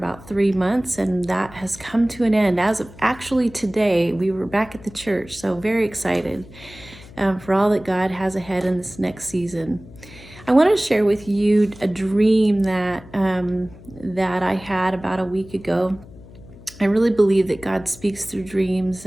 3 months, and that has come to an end. As of actually today, we were back at the church, so very excited for all that God has ahead in this next season. I want to share with you a dream that I had about a week ago. I really believe that God speaks through dreams,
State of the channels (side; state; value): left; noise; hum, 20 dB below the sound